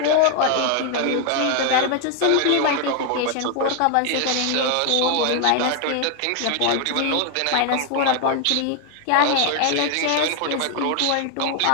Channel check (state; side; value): different; both; correlation 0.00